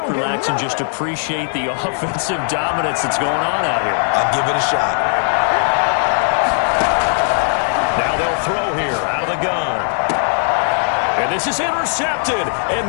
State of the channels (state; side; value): silent; right; digital silence